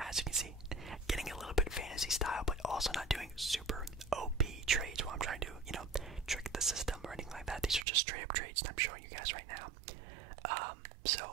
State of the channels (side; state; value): left; drops out; at 7.9 s